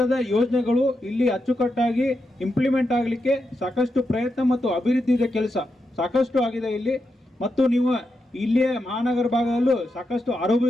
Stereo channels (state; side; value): normal; both; correlation 0.85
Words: ಯೋಜನೆಗಳು ಇಲ್ಲಿ ಅಚ್ಚುಕಟ್ಟಾಗಿ ಇಂಪ್ಲಿಮೆಂಟ್ ಆಗಲಿಕ್ಕೆ ಸಾಕಷ್ಟು ಪ್ರಯತ್ನ ಮತ್ತು ಅಭಿವೃದ್ಧಿಯ ಕೆಲಸ ಸಾಕಷ್ಟು ಆಗಿದೆ ಇಲ್ಲಿ. ಮತ್ತು ನೀವು ಇಲ್ಲಿಯ ಮಹಾನಗರ ಭಾಗದಲ್ಲೂ ಸಾಕಷ್ಟು